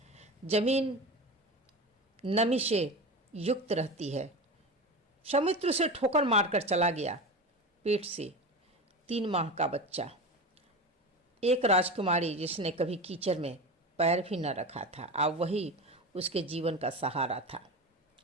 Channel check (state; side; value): normal; both; correlation 0.26